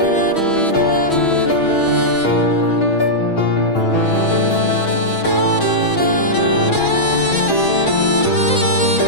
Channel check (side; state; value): right; late; 6.1 ms